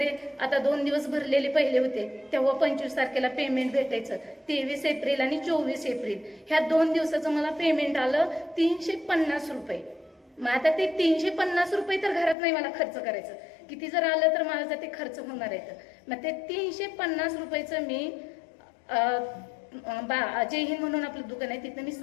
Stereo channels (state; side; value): drops out; right; at 12.4 s